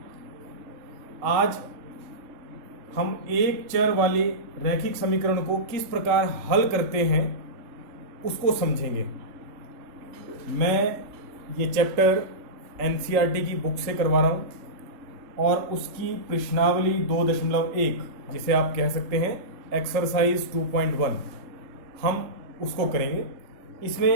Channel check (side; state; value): left; late; 3.7 ms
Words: आज हम एक चर वाले रैखिक समीकरण को किस प्रकार हल करते हैं उसको समझेंगे। मैं ये चैप्टर एनसीईआरटी की बुक से करवा रहा हूं और उसकी प्रश्नावली 2.1 जिसे आप कह सकते हैं एक्सरसाइज 2.1 हम उसको करेंगे।